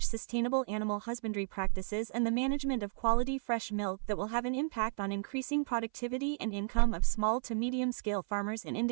sustainable animal husbandry practices and the management of quality fresh milk that will have an impact on increasing productivity and income of small to medium-scale farmers in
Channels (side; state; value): left; silent; 56 dB below the other